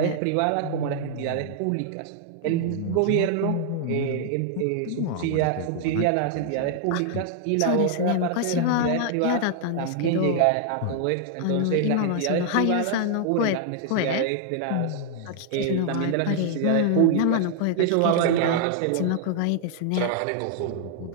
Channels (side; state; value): both; different; correlation -0.01